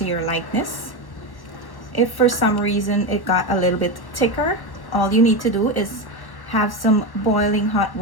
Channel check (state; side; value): late; right; 1.1 ms